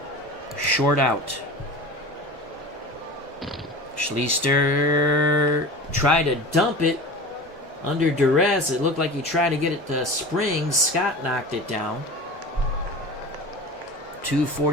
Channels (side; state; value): both; normal; correlation 0.34